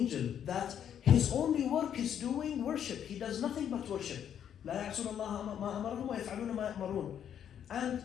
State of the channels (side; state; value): right; quieter; 9.2 dB